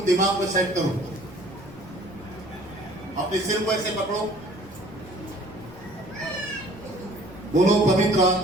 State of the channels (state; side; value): normal; both; correlation 0.53